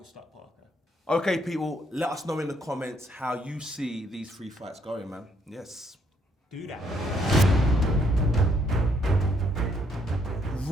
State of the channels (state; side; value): normal; both; correlation 0.70